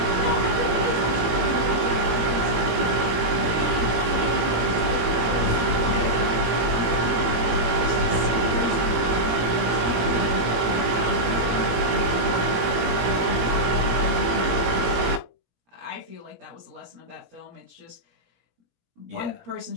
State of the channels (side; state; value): left; late; 18 ms